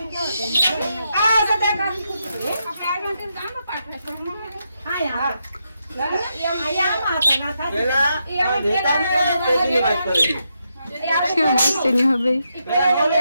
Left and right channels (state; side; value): inverted; both; correlation -0.82